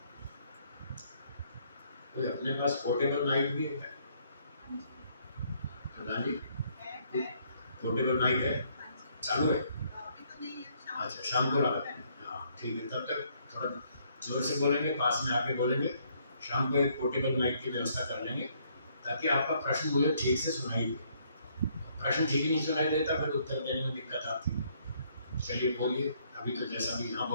कोई अपने पास पोर्टेबल माइक भी है? प्रधान जी, पोर्टेबल माइक है, चालू है? अच्छा, शाम को लगा, हाँ ठीक है, तब तक थोड़ा जोर से बोलेंगे, पास में आके बोलेंगे। शाम को एक पोर्टेबल माइक की व्यवस्था कर लेंगे ताकि आपका प्रश्न मुझे ठीक से सुनाई दे। प्रश्न ठीक ही नहीं सुनाई देता फिर उत्तर देने में दिक्कत आती है। चलिए बोलिए, अभी तो जैसा भी, हाँ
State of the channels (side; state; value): both; inverted; correlation -0.68